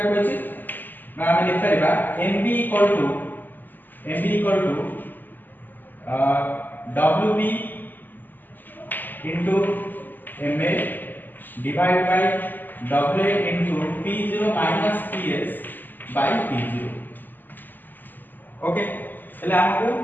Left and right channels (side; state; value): right; late; 0.089 ms